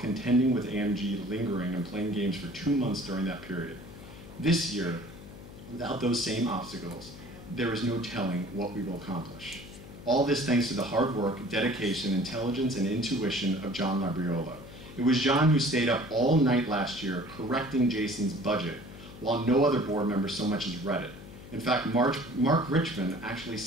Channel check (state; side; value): noise; left; hum, 16 dB below the sound